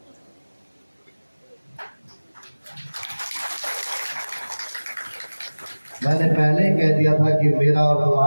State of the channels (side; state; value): both; inverted; correlation -1.00